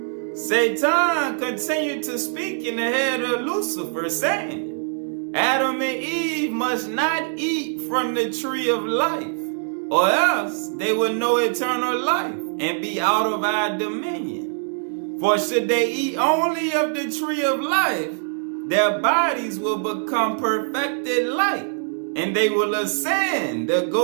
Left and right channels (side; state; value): left; silent; digital silence